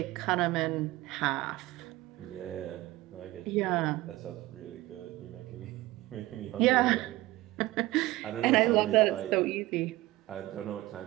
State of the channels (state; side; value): quieter; left; 18.3 dB